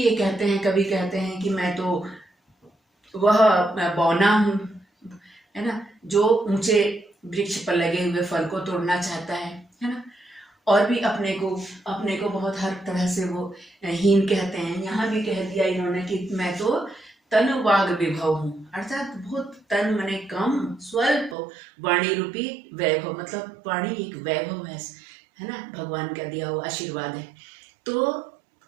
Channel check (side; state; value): left; drops out; at 21.4 s